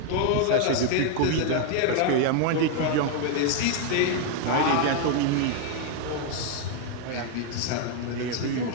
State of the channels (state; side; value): different; both; correlation 0.00